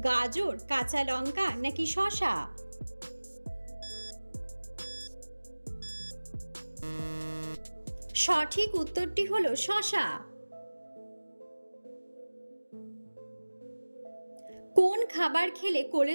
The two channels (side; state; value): both; inverted; correlation -1.00